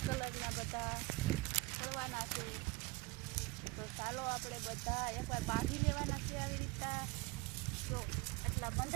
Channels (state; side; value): quieter; left; 23.7 dB